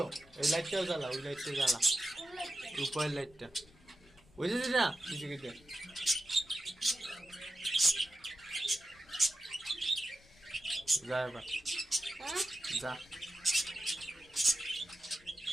ওই লাইটটাও জ্বালা, ওই লাইটটা জ্বালা, উপরের লাইটটা বুঝেছিস না কিছু কিছু। যা এবার যা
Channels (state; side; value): noise; left; rumble, 27 dB below the sound